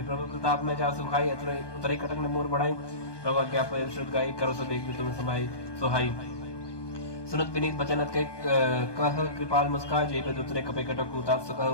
प्रभु प्रताप में जा सुखाई उतरे कटक ने मोर बढ़ाई प्रभु क्या शुद्ध गाई करो सब एक तुम समाई सोहाई सुनत विनीत बचनत के कह कृपाल मुस्का जय पे दूसरे कपे कटक उताप सुख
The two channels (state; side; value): late; right; 1.2 ms